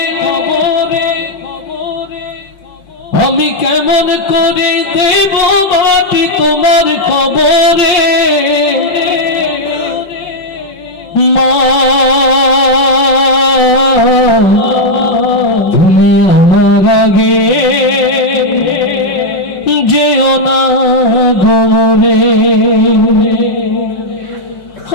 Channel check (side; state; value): right; late; 5.4 ms